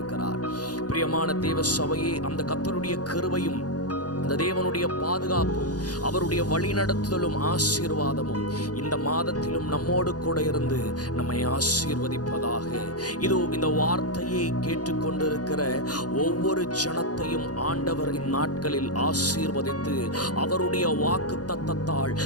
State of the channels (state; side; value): late; right; 0.68 ms